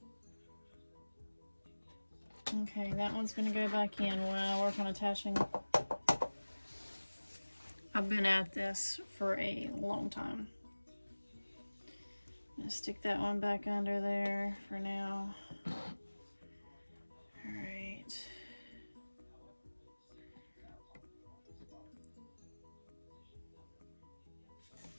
Okay, that one's gonna go back in when I work on attaching. I've been at this for a long time. I'm gonna stick that one back under there for now. All right.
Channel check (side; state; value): both; inverted; correlation -1.00